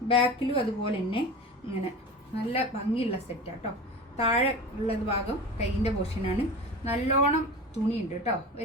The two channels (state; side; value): normal; both; correlation 0.32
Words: ബാക്കിലും അതുപോലെ തന്നെ ഇങ്ങനെ നല്ല ഭംഗിയുള്ള സെറ്റാണ് കേട്ടോ. താഴെ ഉള്ളത് ഭാഗം കൈയിൻ്റെ പോർഷനാണ്. നല്ലോണം തുണിയുണ്ട് കേട്ടോ.